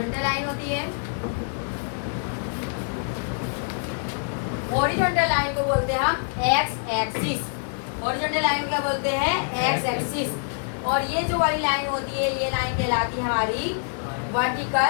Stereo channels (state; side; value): silent; right; digital silence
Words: लाइन होती है। हॉरिजॉन्टल लाइन को बोलते हैं हम एक्स एक्सिस। हॉरिजॉन्टल लाइन क्या बोलते हैं? X axis. और ये जो वाली लाइन होती है, ये लाइन कहलाती है हमारी